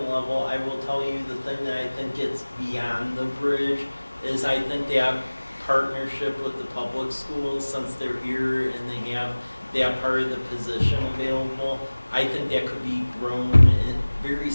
level, I will tell you the thing that I think gets beyond the bridge is I think they have partnership with the public schools, since they're here and they have that part of the position available. I think that could be grown in very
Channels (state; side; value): inverted; both; correlation -1.00